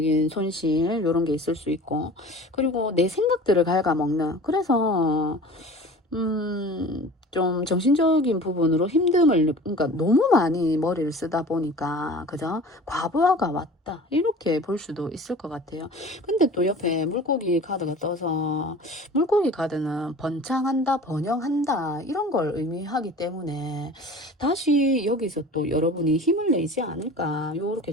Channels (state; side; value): normal; both; correlation 0.41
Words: 손실 이런 게 있을 수 있고, 그리고 내 생각들을 갉아먹는, 그래서 좀 정신적인 부분으로 힘듦을, 그러니까 너무 많이 머리를 쓰다 보니까, 그죠? 과부하가 왔다. 이렇게 볼 수도 있을 것 같아요. 근데 또 옆에 물고기 카드가 떠서, 물고기 카드는 번창한다, 번영한다, 이런 걸 의미하기 때문에, 다시 여기서 또 여러분이 힘을 내지 않을까, 요렇게